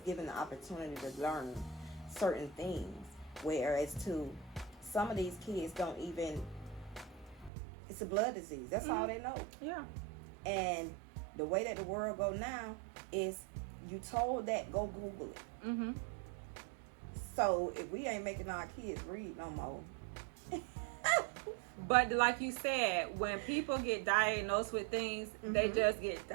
the opportunity to learn certain things, whereas to some of these kids don't even, it's a blood disease. That's all they know. Yeah. And the way that the world go now is, you told that, go Google it. Mm-hmm. So if we ain't making our kids read no more. But like you said, when people get diagnosed with things, they just get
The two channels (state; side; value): drops out; left; at 7.5 s